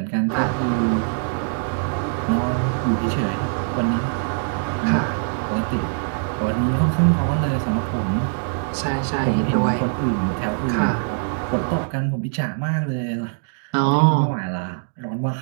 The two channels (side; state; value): left; silent; digital silence